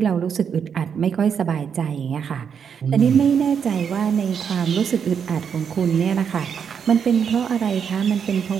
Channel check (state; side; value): quieter; left; 7.2 dB